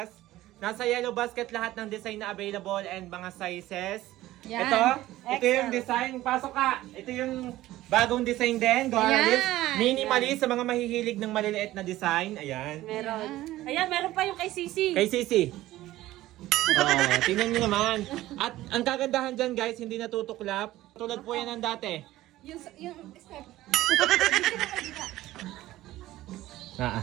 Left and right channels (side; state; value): left; quieter; 15.9 dB